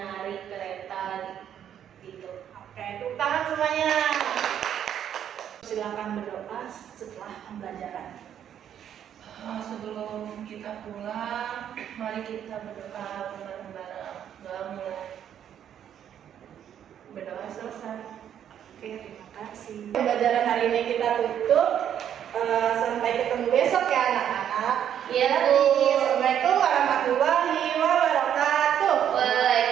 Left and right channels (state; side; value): quieter; left; 9.6 dB